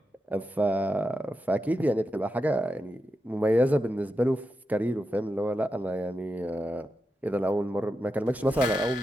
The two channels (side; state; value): both; normal; correlation 0.88